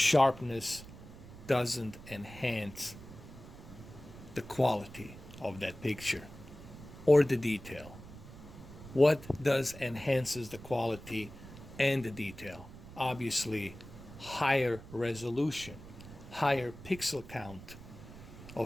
doesn't enhance the quality of that picture or the detail. What does enhances the quality and the detail? Obviously, higher resolution, higher pixel count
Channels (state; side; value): noise; right; rumble, 16 dB below the sound